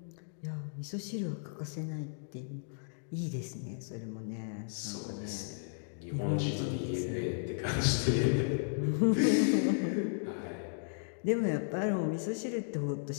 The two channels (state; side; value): silent; right; digital silence